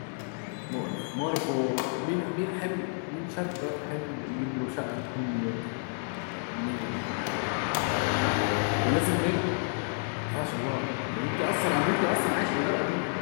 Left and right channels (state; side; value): silent; right; 58 dB below the other